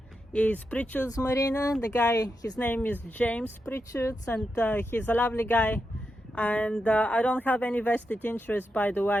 is Pritchard's Marina. The guy, his name is James Pritchards, and he's a lovely guy. And I don't have any vested interest, by the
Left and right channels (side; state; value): both; normal; correlation 0.86